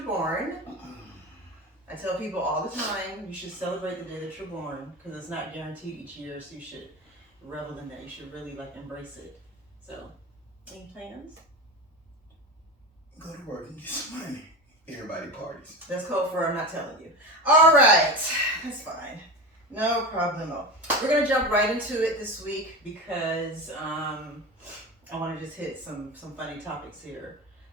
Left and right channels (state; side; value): normal; both; correlation 0.25